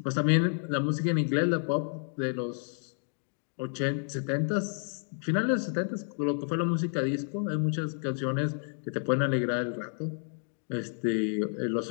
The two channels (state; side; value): silent; right; 58 dB below the other